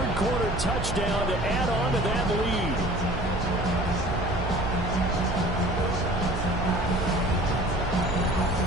quarter touchdown to add on to that lead.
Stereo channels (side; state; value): right; noise; hum, 4 dB below the sound